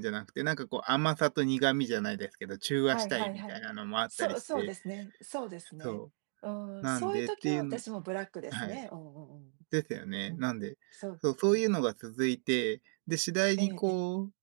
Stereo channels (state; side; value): silent; left; digital silence